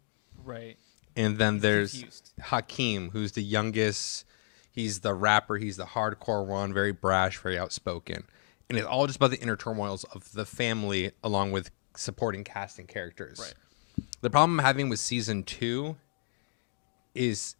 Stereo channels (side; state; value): right; silent; digital silence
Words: Right. And then He's there's confused. Hakeem, who's the youngest. He's the rapper. He's the hardcore one, very brash, very outspoken. And it's all just about the inner turmoils of the family along with supporting cast and characters. Right. The problem I'm having with season 2 is